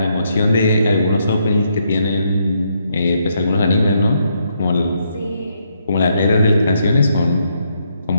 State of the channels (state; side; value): inverted; both; correlation -0.76